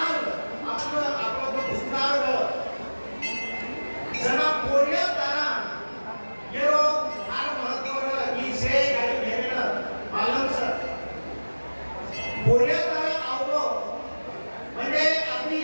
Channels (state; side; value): inverted; both; correlation -1.00